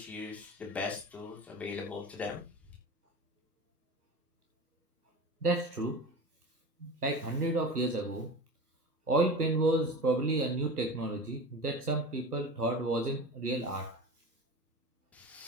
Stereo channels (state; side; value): normal; both; correlation 0.32